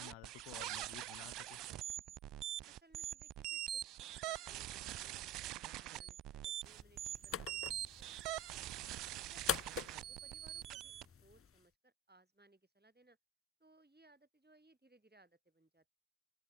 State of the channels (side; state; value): left; quieter; 4.1 dB